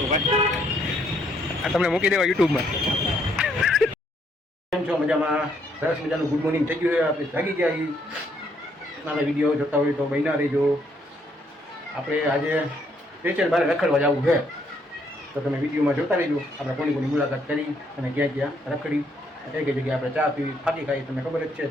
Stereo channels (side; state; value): both; normal; correlation 0.71